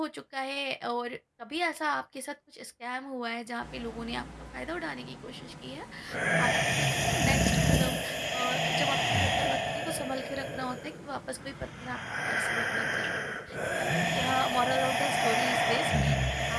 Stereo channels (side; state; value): both; identical; correlation 1.00